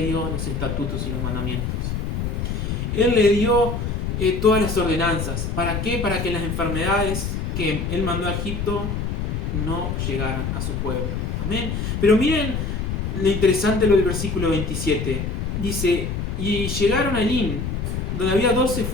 dio los estatutos y los mandamientos. Él le dio todas las ordenanzas. ¿Para qué? Para que las enfermedades que Él mandó a Egipto no llegaran a su pueblo. Amén. Pero miren lo interesante lo del versículo 27. Dice, y llegaron a Lin, donde había 12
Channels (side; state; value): left; noise; rumble, 2 dB below the sound